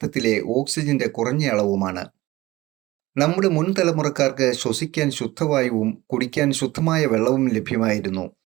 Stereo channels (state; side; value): quieter; left; 18.5 dB